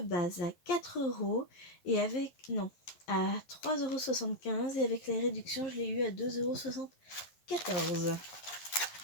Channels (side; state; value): right; late; 11 ms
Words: à 4 € et avec, non, à 3,75 € et avec les réductions, je l'ai eu à 2,74 €.